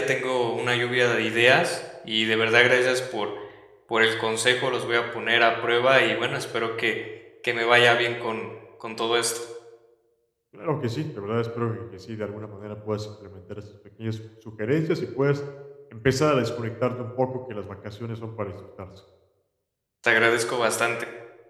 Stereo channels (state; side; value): identical; both; correlation 1.00